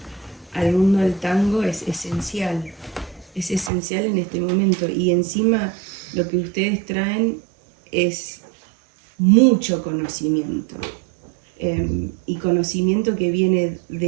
al mundo del tango es esencial en este momento. Y encima lo que ustedes traen es mucho conocimiento. Y conocimiento que viene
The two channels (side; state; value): left; drops out; at 3.7 s